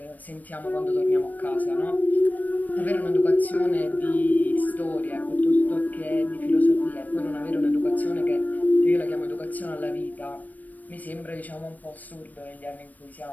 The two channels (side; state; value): right; late; 0.081 ms